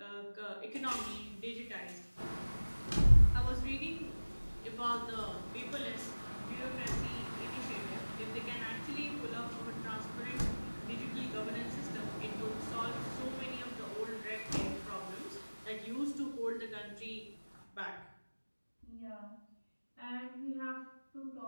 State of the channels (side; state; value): both; inverted; correlation -1.00